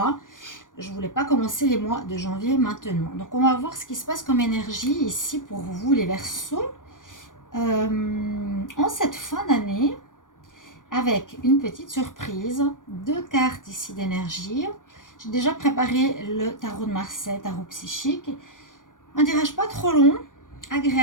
je ne voulais pas commencer les mois de janvier maintenant. Donc on va voir ce qui se passe comme énergie ici pour vous les Verseaux en cette fin d'année, avec une petite surprise, 2 cartes ici d'énergie. J'ai déjà préparé le tarot de Marseille, tarot psychique. Un tirage pas trop long,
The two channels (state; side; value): late; right; 0.88 ms